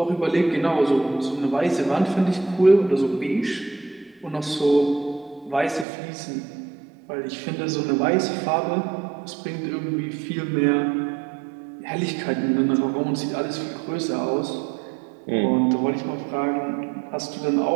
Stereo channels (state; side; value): drops out; left; at 5.9 s